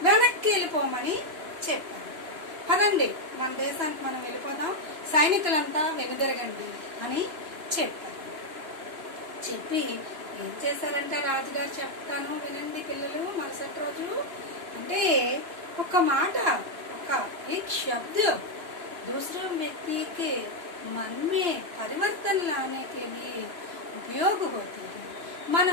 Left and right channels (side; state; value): left; late; 2.9 ms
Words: వెనక్కి వెళ్ళిపోమని చెప్పారు. పదండి, మన దేశానికి మనం వెళ్ళిపోదాం, సైనికులంతా వెనుదిరగండి అని చెప్పారు. చెప్పి ఏం చేశారంట రాజుగారు, చెప్తాను వినండి పిల్లలు. మరుసటి రోజు అంటే ఒక మాట, एक शब्द दूसरे व्यक्ति के मन में परिवर्तन लाने के लिए उपयोग होती है.